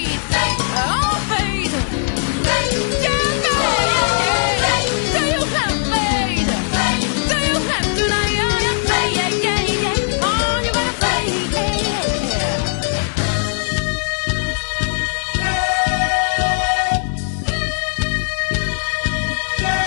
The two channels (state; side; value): silent; right; digital silence